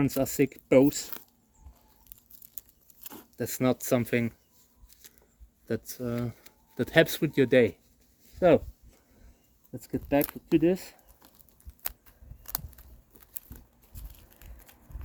are sick, both. That's not something that helps with your day. So, let's get back to this.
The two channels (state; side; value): identical; both; correlation 1.00